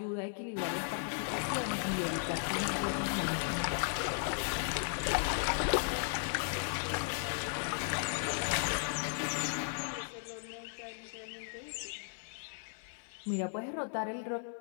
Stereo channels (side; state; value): right; silent; 54 dB below the other